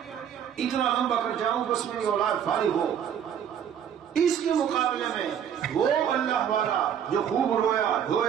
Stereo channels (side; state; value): left; quieter; 8.8 dB